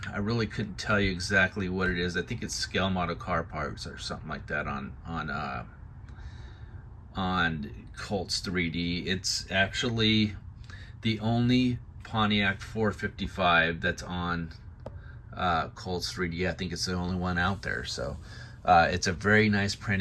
really couldn't tell you exactly what it is. I think it's scale model car parts or something like that on Colts 3D. It's actually the only Pontiac 455 that's on Colts 3D. I think it's the only one out there. So it's a very nice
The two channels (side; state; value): both; identical; correlation 1.00